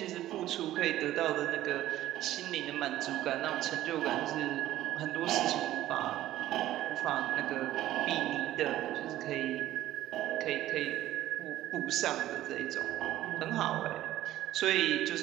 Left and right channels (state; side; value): quieter; left; 14.0 dB